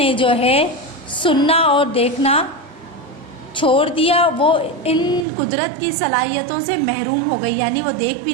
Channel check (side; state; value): left; drops out; at 5.2 s